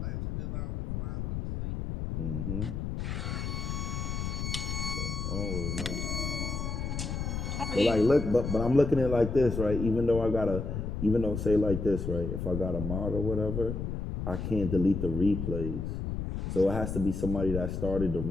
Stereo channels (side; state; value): left; noise; rumble, 3 dB below the sound